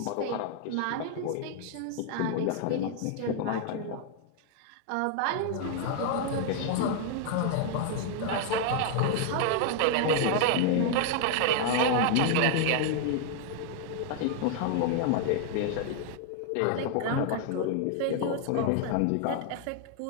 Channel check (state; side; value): different; both; correlation 0.00